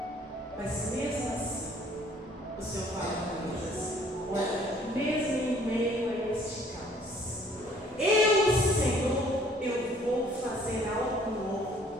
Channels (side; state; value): both; normal; correlation 0.58